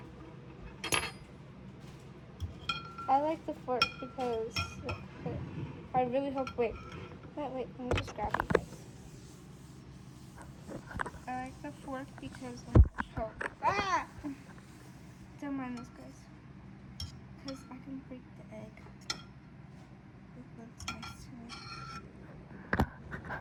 I like the fork because I really hope. Wait, let me just grab you guys. I like the fork because don't mind this, guys, because I can break the egg. It looks nice to me.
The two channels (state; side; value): identical; both; correlation 1.00